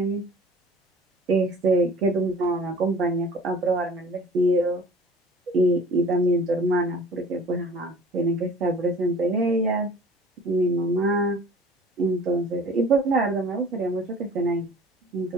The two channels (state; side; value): normal; both; correlation 0.47